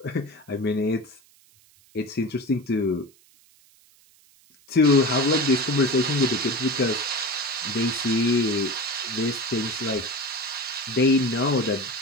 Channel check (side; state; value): right; noise; hiss, 30 dB below the sound